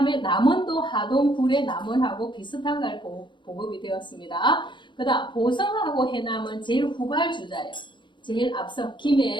남원도 하동 불의 남원하고 비슷한 걸 보급이 되었습니다. 그 다음 보성하고 해남은 제일 후발주자예요. 제일 앞서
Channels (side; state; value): right; late; 0.23 ms